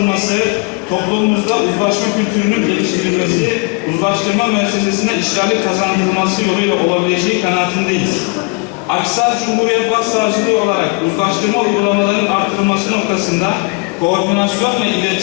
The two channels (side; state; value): right; quieter; 30.0 dB